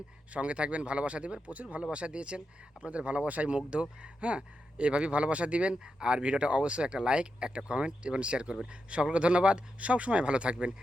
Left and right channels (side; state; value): both; normal; correlation 0.86